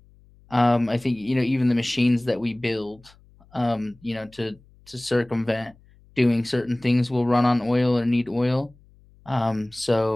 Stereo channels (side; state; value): left; noise; hum, 28 dB below the sound